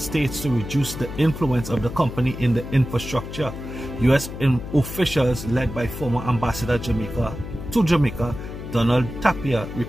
to reduce the influence of the company in the infrastructure. U.S. officials led by former Ambassador to Jamaica, Donald Tapia,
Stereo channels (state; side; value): noise; left; hum, 10 dB below the sound